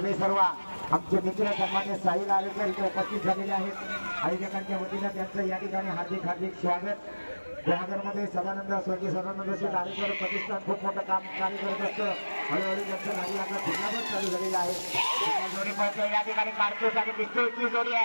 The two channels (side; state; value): both; inverted; correlation -1.00